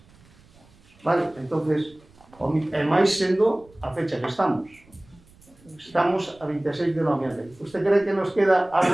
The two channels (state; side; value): noise; right; rumble, 28 dB below the sound